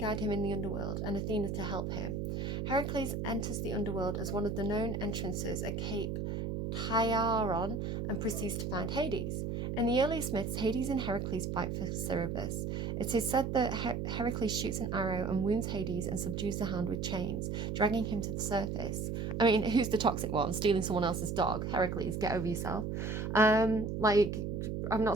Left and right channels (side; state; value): right; noise; hum, 2 dB below the sound